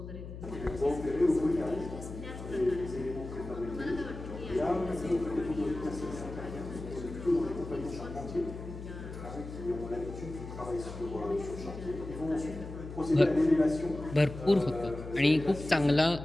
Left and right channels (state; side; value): noise; left; hum, 10 dB below the sound